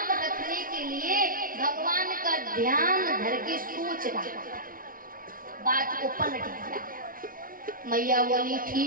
रखने के लिए भगवान का ध्यान धर के सोच रहा था। बात को पलट दिया। मैया बोली,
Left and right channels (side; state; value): left; late; 0.41 ms